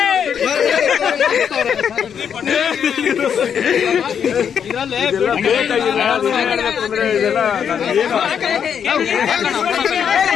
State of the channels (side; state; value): right; quieter; 7.8 dB